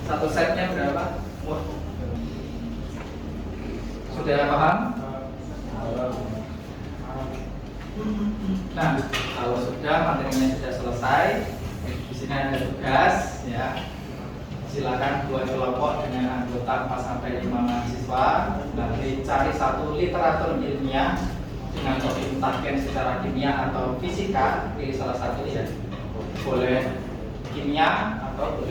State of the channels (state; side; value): identical; both; correlation 1.00